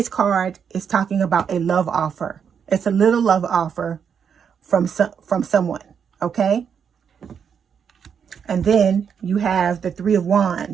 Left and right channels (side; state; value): left; quieter; 7.2 dB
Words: card is talking about a love offer. It's a little love offer from someone. Okay. And then you have the Three of